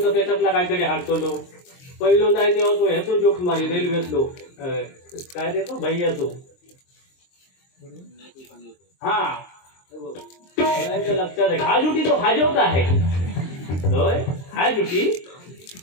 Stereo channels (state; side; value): late; right; 23 ms